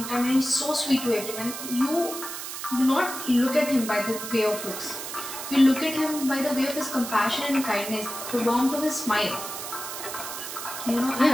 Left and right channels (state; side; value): noise; right; hiss, 8 dB below the sound